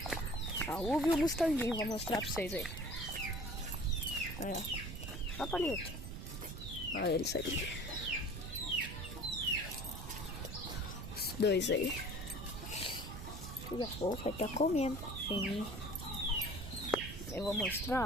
A uva e o Mustanguinho, vou mostrar pra vocês aí. Aí, ó. Ó, Palito. Olha eles aí. Os dois aí. Tudo a pouco vai estar comendo. Sim. Eu vou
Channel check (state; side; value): noise; right; rumble, 8 dB below the sound